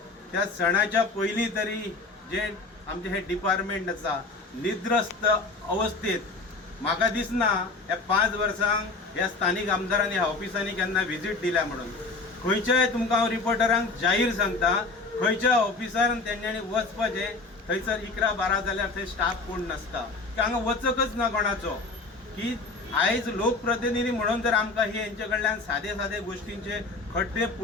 त्या सणाच्या पयलीं तरी जे आमचे हे डिपार्टमेंट आसा निद्रस्त अवस्थेत म्हाका दिसना ह्या 5 वर्सांक ह्या स्थानीक आमदारांनी ह्या ऑफिसांनी केन्ना व्हिजीट दिल्या म्हणून खंयच्याय तुमकां हांव रिपोर्टरांक जाहीर सांगता खंयच्या ऑफिसार तेंच्यांनी वचपाचें थंयसर 11-12 जाल्यार थंय स्टाफ कोण नासता हांगा वचकच ना कोणाचो की आयज लोकप्रतिनिधी म्हणून जर आमकां ही हेंचे कडल्यान सादे गोश्टींचे खड्डे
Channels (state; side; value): quieter; right; 3.7 dB